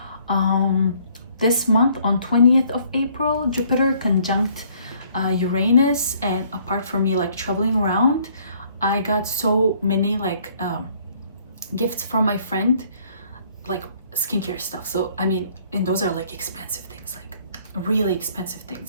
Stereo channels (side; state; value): both; inverted; correlation -0.62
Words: this month on 20th of April, Jupiter conjunct Uranus, and apart from me like traveling around, I got so many like gifts from my friend, like skincare stuff. So I mean, and those are like expensive things, like really expensive